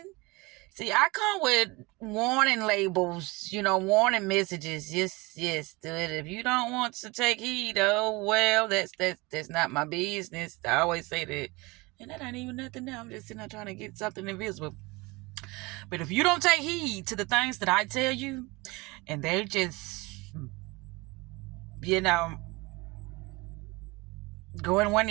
See, I come with warning labels, warning messages. Yes, do it. If you don't want to take heed, oh well, that's not my business. I always say that. And that ain't even nothing now. I'm just sitting there trying to get something invisible. But if you don't take heed to the things that I tell you, and they just, you know, go in one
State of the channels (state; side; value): quieter; left; 24.1 dB